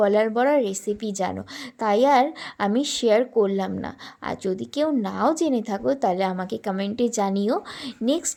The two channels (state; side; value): identical; both; correlation 1.00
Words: বড়ার রেসিপি জানো, তাই আর আমি শেয়ার করলাম না। আর যদি কেউ নাও জেনে থাকো তাহলে আমাকে কমেন্টে জানিও। নেক্সট